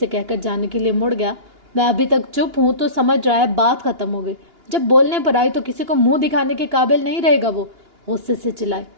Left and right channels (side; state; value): left; late; 2.8 ms